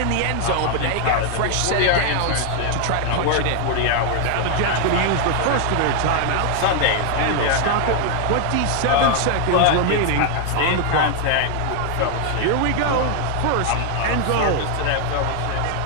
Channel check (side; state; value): both; different; correlation 0.00